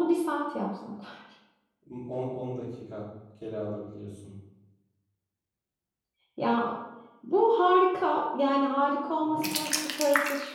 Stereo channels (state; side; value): identical; both; correlation 1.00